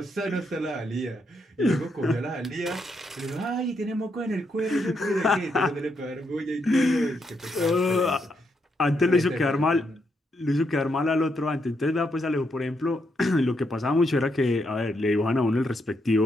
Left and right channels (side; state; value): both; normal; correlation 0.79